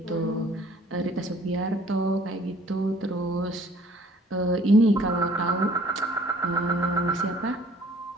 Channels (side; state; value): both; normal; correlation 0.55